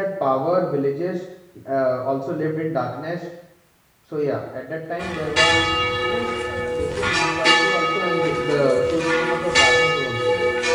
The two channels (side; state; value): both; identical; correlation 1.00